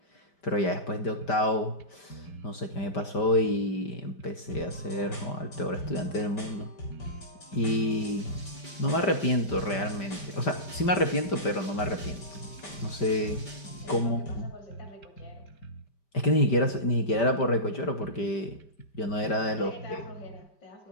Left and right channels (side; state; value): right; late; 5.1 ms